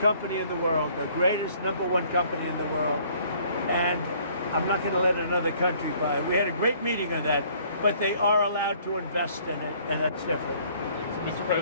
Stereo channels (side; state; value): both; inverted; correlation -0.59